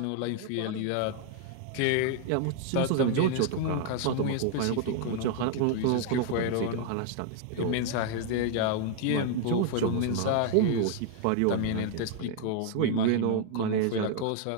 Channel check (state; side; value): different; both; correlation 0.00